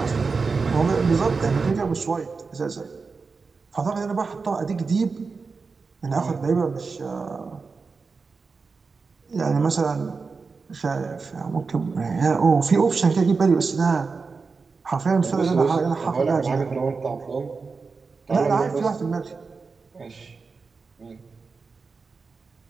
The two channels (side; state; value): left; quieter; 4.6 dB